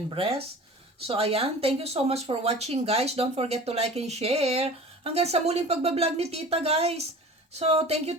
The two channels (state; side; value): normal; both; correlation 0.40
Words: breast. So, ayan. Thank you so much for watching, guys. Don't forget to like and share. Hanggang sa muling pagbablog ni Tita, guys. So, thank